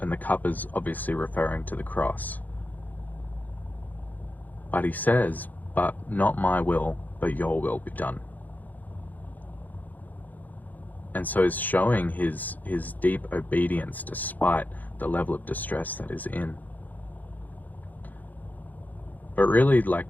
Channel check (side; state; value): right; late; 0.082 ms